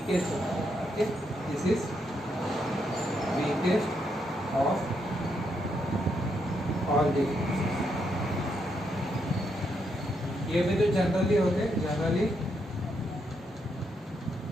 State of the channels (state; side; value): normal; both; correlation 0.79